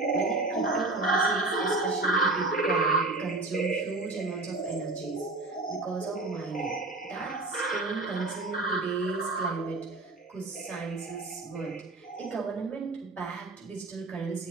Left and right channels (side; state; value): left; quieter; 3.1 dB